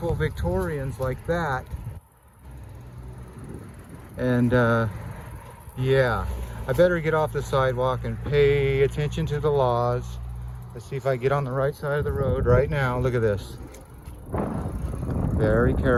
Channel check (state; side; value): identical; both; correlation 1.00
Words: Victorians like that. And yeah, I better get off the sidewalk and pay attention to the laws. Let's see if I get on the right side of the road right now. Look at this. Very